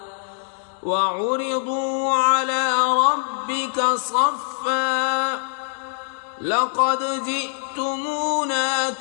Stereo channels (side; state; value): right; silent; digital silence